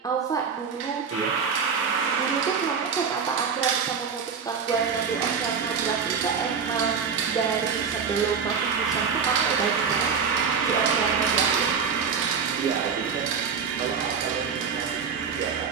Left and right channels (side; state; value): left; quieter; 6.2 dB